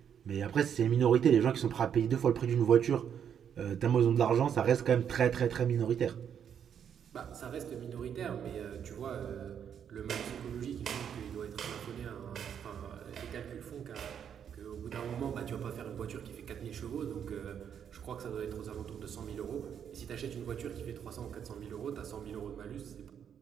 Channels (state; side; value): quieter; left; 8.4 dB